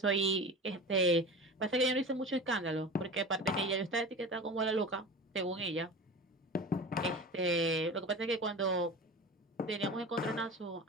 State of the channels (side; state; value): both; normal; correlation 0.32